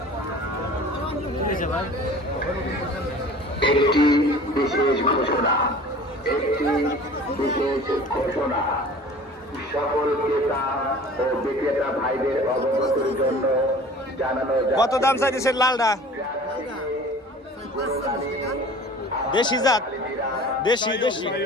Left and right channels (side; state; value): both; normal; correlation 0.44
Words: একটি বিশেষ ঘোষণা, সকল ক্রেতা ও বিক্রেতা ভাইদের অবগতির জন্য জানানো। কত দাম চাইতেছেন লালটা? দেশি জাত? দেশি